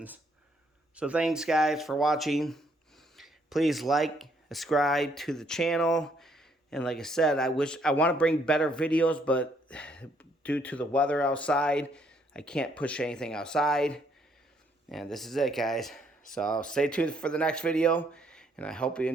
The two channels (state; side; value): normal; both; correlation 0.69